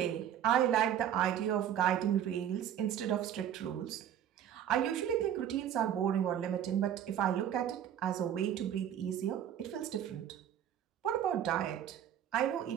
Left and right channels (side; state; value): left; quieter; 10.1 dB